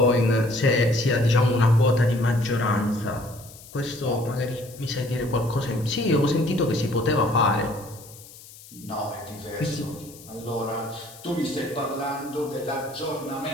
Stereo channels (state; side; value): noise; left; hiss, 19 dB below the sound